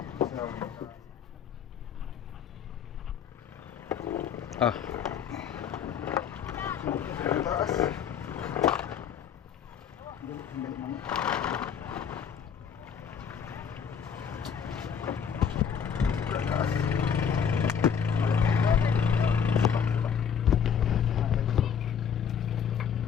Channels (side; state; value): right; quieter; 7.4 dB